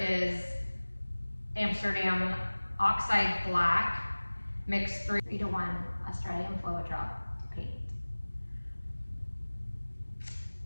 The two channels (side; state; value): both; inverted; correlation -1.00